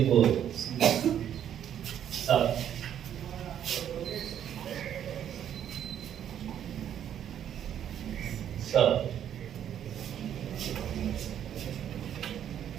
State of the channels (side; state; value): left; quieter; 9.8 dB